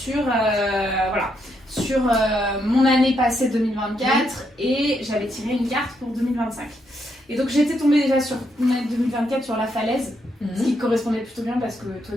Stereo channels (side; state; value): both; normal; correlation 0.78